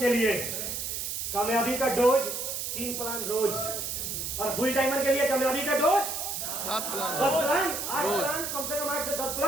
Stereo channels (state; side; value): noise; right; hiss, 4 dB below the sound